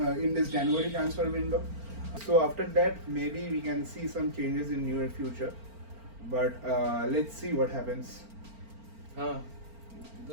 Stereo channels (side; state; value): left; late; 4.4 ms